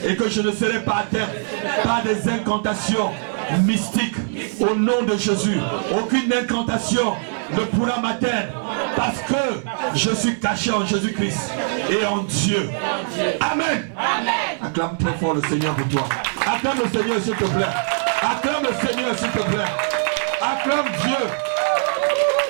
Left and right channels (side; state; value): left; silent; digital silence